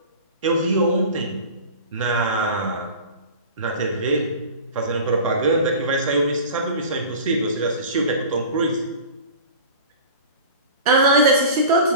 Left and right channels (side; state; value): both; inverted; correlation -0.37